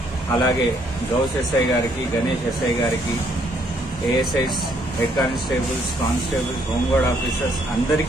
అలాగే గౌస్ ఎస్ఐ గారికి, గణేష్ ఎస్ఐ గారికి, ASIs, head constables, constables, home guard officers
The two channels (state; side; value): normal; both; correlation 0.68